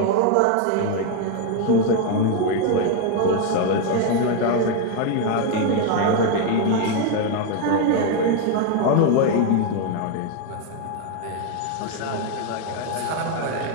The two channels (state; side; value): different; both; correlation 0.01